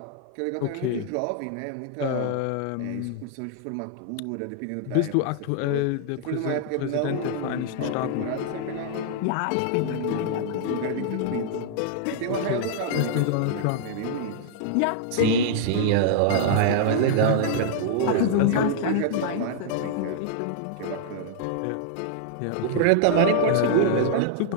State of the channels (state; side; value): different; both; correlation -0.01